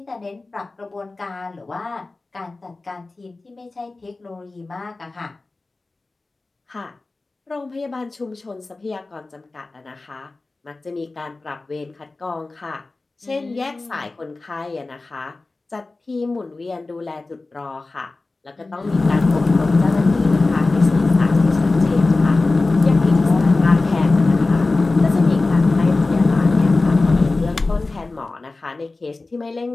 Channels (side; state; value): right; quieter; 3.4 dB